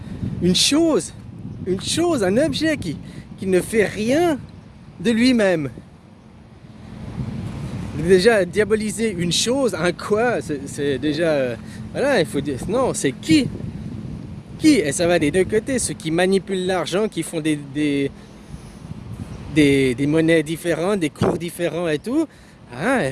Une chose, un objet qui ne fait rien de lui-même. Déjà diaboliser une chose, un quoi, c'est déjà... voilà, il faut dire, non, c'est qui? Et ça va des deux côtés, ceux qui manipulent l'argent, qui font des monnaies différentes, des cours différents et tout. Ah,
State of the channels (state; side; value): identical; both; correlation 1.00